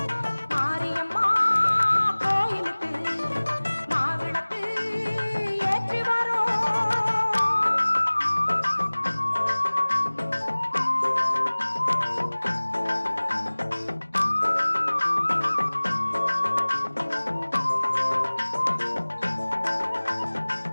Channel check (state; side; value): inverted; both; correlation -1.00